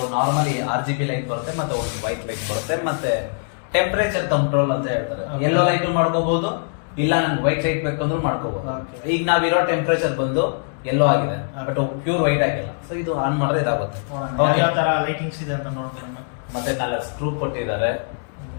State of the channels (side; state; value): right; silent; digital silence